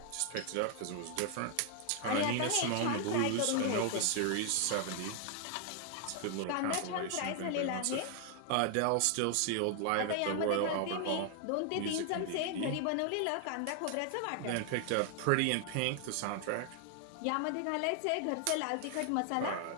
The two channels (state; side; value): different; both; correlation 0.00